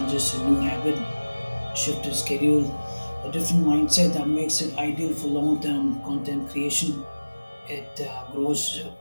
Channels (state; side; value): inverted; both; correlation -1.00